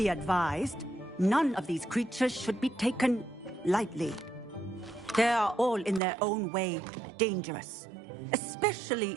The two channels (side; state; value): left; drops out; at 6.0 s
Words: advised, none of these creatures should be taken lightly. They are all in their own way dangerous,